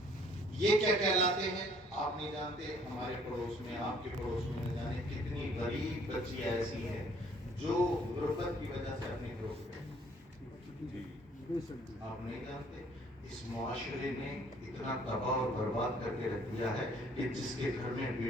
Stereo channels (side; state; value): both; normal; correlation 0.59